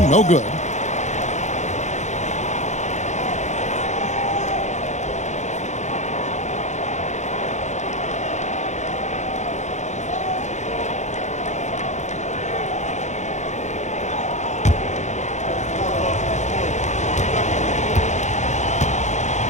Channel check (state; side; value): late; right; 0.34 ms